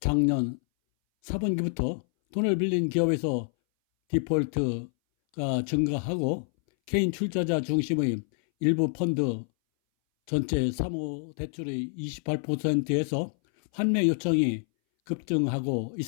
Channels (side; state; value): right; silent; 60 dB below the other